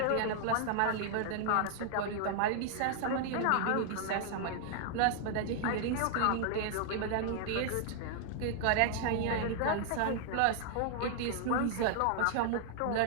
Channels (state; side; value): different; both; correlation 0.00